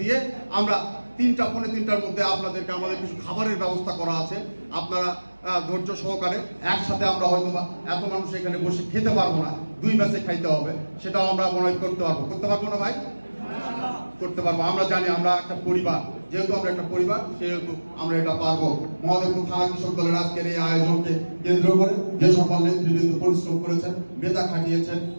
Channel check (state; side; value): inverted; both; correlation -1.00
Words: দিয়ে আমরা 3:45টার মধ্যে আপনাদেরকে, আমাদের কিছু খাবারের ব্যবস্থা করা আছে, আপনারা ধৈর্য সহকারে একসাথে আমরা হয়তো বা এত মানুষ এখানে বসে খেতে পারবো না, 2 ব্যাচে খাইতে হবে, সেটাও আমরা মনে হয় করতে পারবো না ভাই? করতে পারবো। আমরা জানি আমরা একটা পরিবার, যেহেতু আমরা একটা পরিবার, সেহেতু আমরা এটা পারবো। মহাদেবপুর থানা কৃষক দলের আজকের এই আয়োজনকে কেন্দ্র করে যে সকল নেতৃবৃন্দ পরিশ্রম করেছেন, মেধা খাটিয়েছেন,